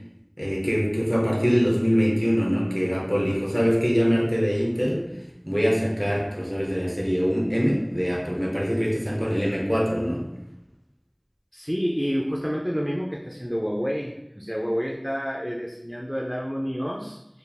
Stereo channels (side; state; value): both; identical; correlation 1.00